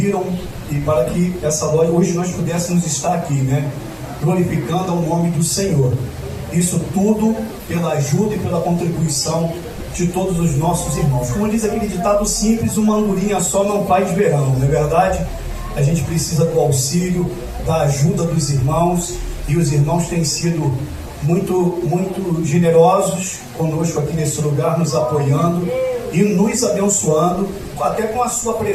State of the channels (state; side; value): identical; both; correlation 1.00